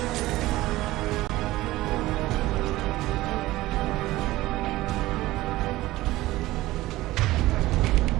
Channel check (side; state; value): left; quieter; 17.4 dB